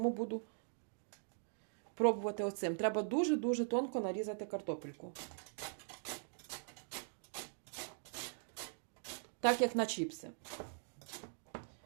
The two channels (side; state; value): left; silent; digital silence